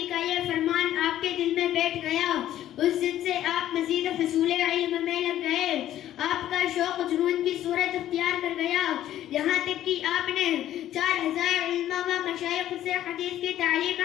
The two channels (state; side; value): quieter; right; 12.5 dB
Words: کا یہ فرمان آپ کے دل میں بیٹھ گیا. اس دن سے آپ مزید حصول علم میں لگ گئے. آپ کا شوق جنون کی صورت اختیار کر گیا، یہاں تک کہ آپ نے 4000 علماء و مشائخ سے حدیث کی تعلیم